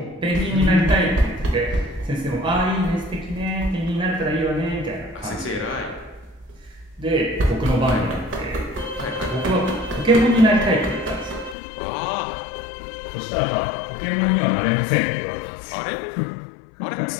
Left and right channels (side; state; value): right; drops out; at 11.6 s